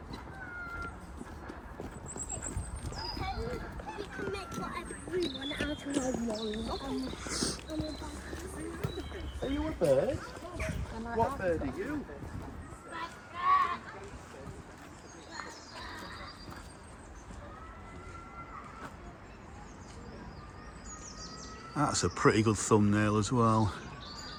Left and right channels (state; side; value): identical; both; correlation 1.00